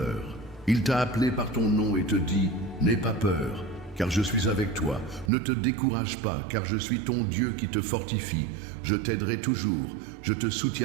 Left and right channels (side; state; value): left; drops out; at 5.3 s